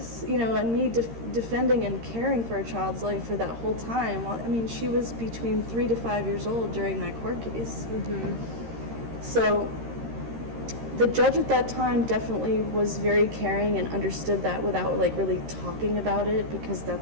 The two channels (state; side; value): late; left; 13 ms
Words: and me defending and caring for a child's life for that whole time. Well, I mean, she was between 3 to 5 years old during that court case. So the judge at that time definitely was very caring and understood that without like really talking about it, because